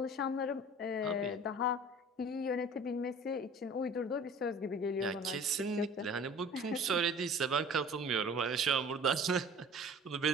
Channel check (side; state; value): both; normal; correlation 0.45